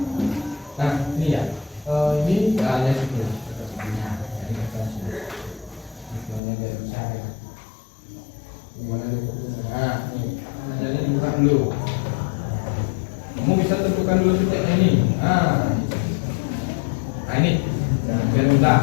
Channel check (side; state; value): right; drops out; at 6.4 s